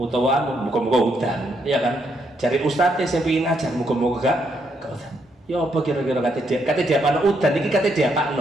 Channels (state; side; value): normal; both; correlation 0.76